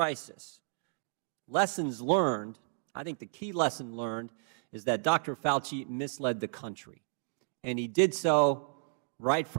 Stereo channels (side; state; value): left; silent; digital silence